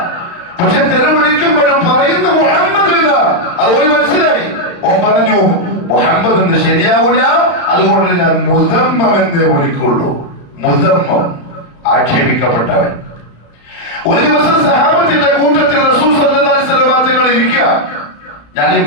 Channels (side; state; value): right; late; 35 ms